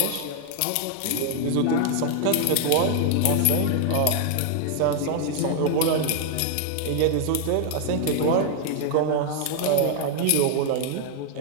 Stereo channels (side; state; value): both; different; correlation 0.00